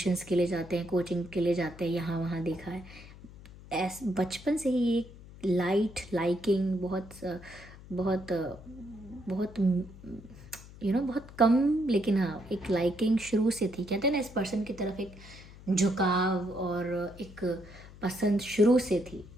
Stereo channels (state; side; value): noise; left; hum, 18 dB below the sound